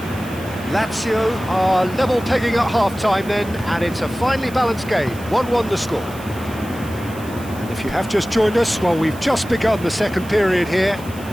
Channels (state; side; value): noise; right; hiss, 19 dB below the sound